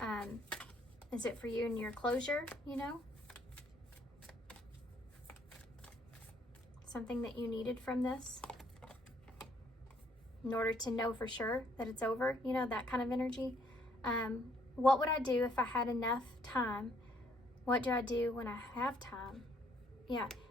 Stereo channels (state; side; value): normal; both; correlation 0.66